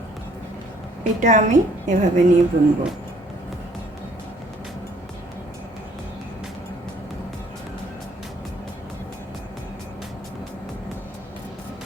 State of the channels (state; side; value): normal; both; correlation 0.61